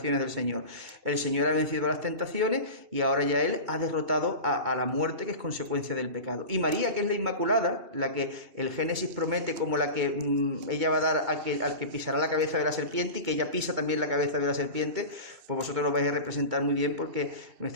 del Señor. El Señor ha vencido las tentaciones y ahora ya Él ha derrotado a la muerte, que es consecuencia del pecado. Y María, que es la Inmaculada, la que el Génesis promete como la que ella va a dar al que pisará la cabeza de la serpiente, y que ella pisa también la cabeza de la serpiente, pues vosotros lo vais a representar muy bien, porque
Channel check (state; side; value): late; left; 2.3 ms